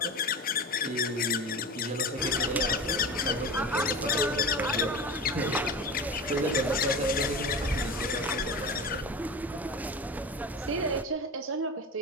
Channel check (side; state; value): both; normal; correlation 0.29